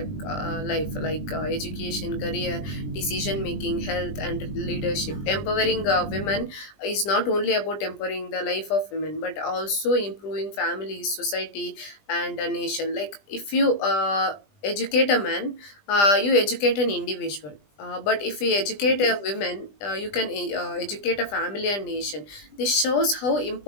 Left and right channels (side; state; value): right; late; 20 ms